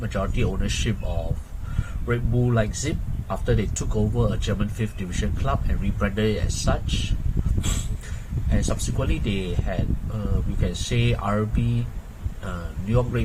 ownership of Red Bull Leipzig after they took over a German 5th division club and rebranded it as such. And subsequently they had, we can say, RB, New York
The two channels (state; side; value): identical; both; correlation 1.00